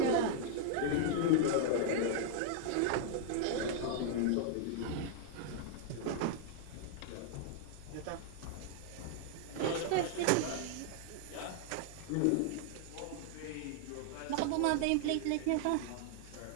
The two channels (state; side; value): different; both; correlation -0.01